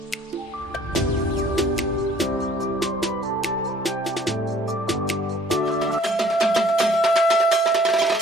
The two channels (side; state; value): both; normal; correlation 0.56